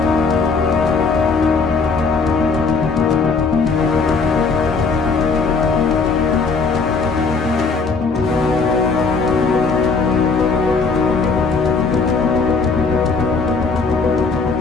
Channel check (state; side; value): quieter; right; 4.5 dB